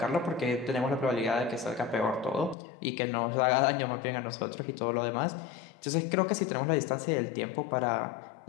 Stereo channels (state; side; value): drops out; right; at 2.6 s